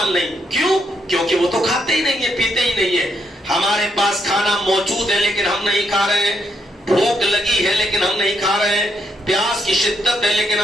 نہیں. کیوں؟ کیونکہ وہ تو کھاتے ہی نہیں ہیں، پیتے ہی نہیں ہیں. ہمارے پاس کھانا موجود ہے لیکن ہم نہیں کھا رہے ہیں، بھوک لگی ہے لیکن ہم نہیں کھا رہے ہیں، پیاس کی شدت ہے لیکن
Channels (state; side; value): normal; both; correlation 0.77